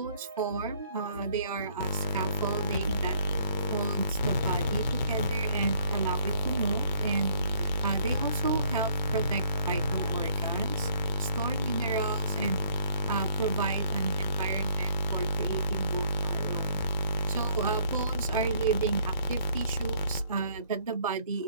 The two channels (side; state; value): both; inverted; correlation -0.62